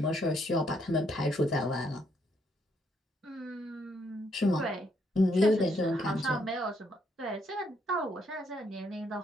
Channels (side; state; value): both; normal; correlation 0.73